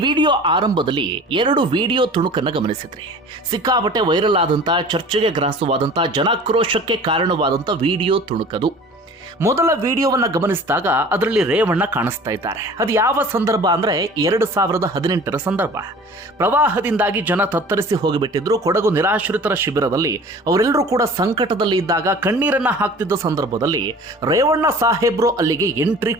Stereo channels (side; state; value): both; normal; correlation 0.44